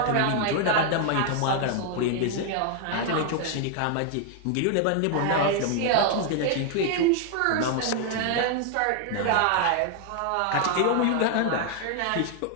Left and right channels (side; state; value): both; different; correlation 0.00